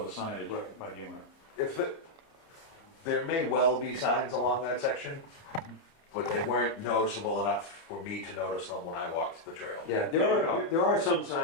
the signage Right. by the owner. If there may well be signs along that section, but they weren't noticeable enough for me to notice them when I walked the trail. Yeah, there are some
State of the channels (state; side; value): late; right; 30 ms